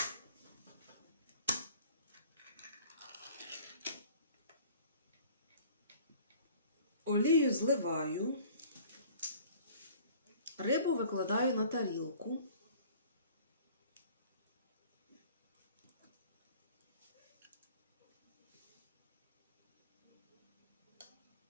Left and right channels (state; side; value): inverted; both; correlation -0.50